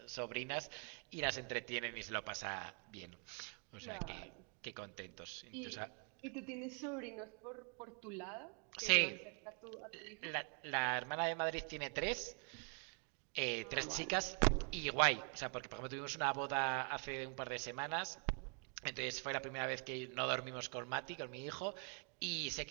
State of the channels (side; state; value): left; quieter; 38.5 dB